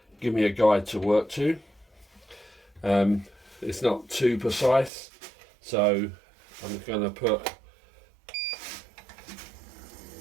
give me a guide to work to. It's not too precise, so I'm going to put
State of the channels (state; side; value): drops out; left; at 4.9 s